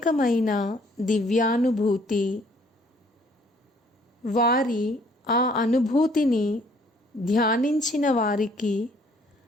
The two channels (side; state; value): both; normal; correlation 0.61